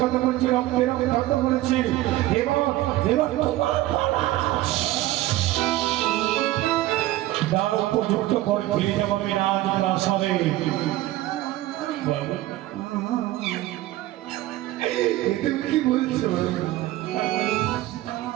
করেছি, রক্তের বিখ্যাত করেছি এবং তার উপযুক্ত করে ফিরে যাবো রাজ প্রাসাদে। তুমি কি বলছো?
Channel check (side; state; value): left; quieter; 16.0 dB